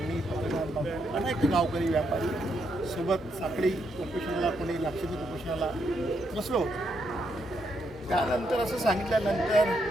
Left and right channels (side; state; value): both; normal; correlation 0.78